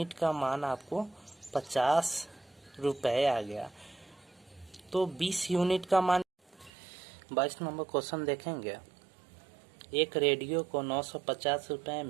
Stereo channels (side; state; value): left; drops out; at 6.7 s